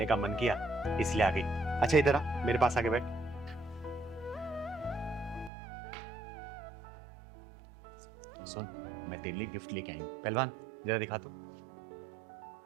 का मन किया इसलिए आ गई। अच्छा इधर आ, मेरे पास आके बैठ। सुन, मैं तेरे लिए गिफ्ट लेके आई हूँ। पहलवान जरा दिखा तू,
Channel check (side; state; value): left; drops out; at 5.5 s